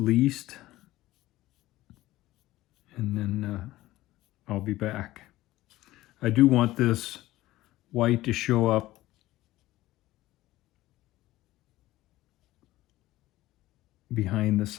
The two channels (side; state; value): right; quieter; 16.6 dB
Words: And then I'll be back. I do want this white to show up behind the